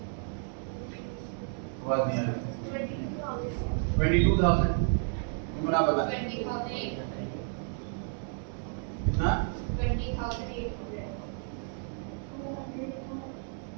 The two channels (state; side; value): silent; left; 57 dB below the other